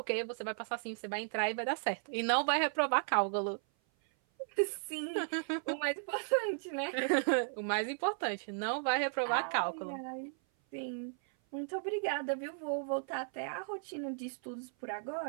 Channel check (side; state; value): left; silent; 54 dB below the other